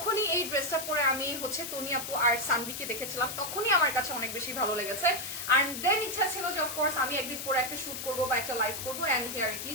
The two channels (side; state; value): left; noise; hiss, 6 dB below the sound